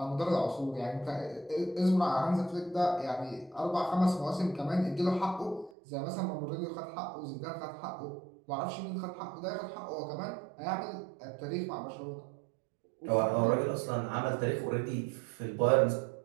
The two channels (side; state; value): left; drops out; at 5.7 s